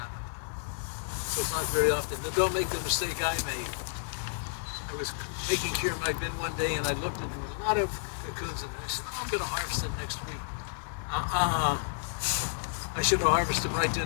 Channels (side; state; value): right; silent; digital silence